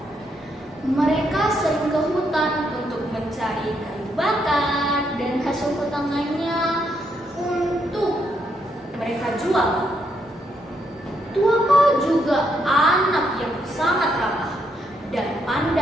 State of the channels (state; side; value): normal; both; correlation 0.76